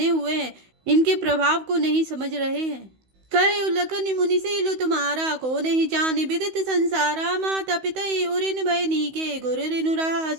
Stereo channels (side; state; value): left; late; 16 ms